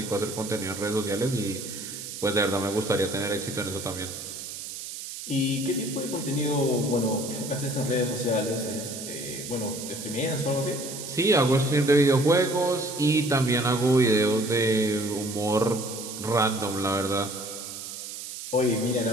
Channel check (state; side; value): noise; right; hiss, 9 dB below the sound